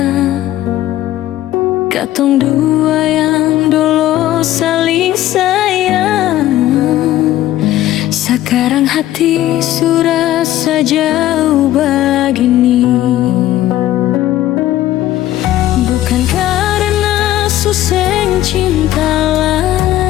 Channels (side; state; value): right; quieter; 14.1 dB